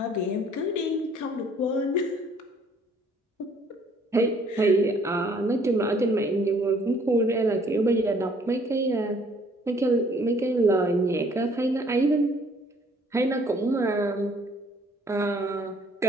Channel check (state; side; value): normal; both; correlation 0.60